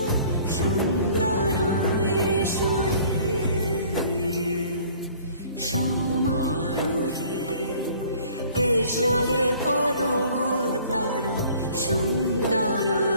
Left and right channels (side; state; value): both; inverted; correlation -0.52